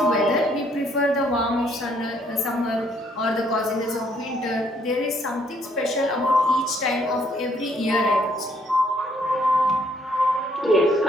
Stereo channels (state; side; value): normal; both; correlation 0.67